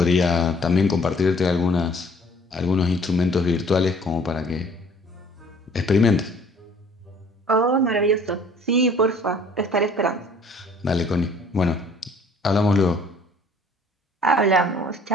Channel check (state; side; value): normal; both; correlation 0.55